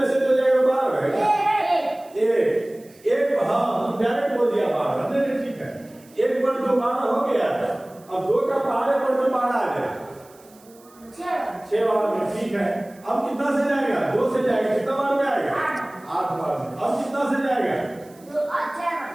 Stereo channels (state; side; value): noise; right; hiss, 27 dB below the sound